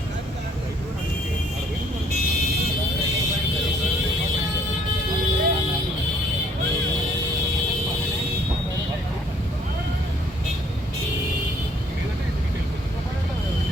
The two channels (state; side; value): normal; both; correlation 0.62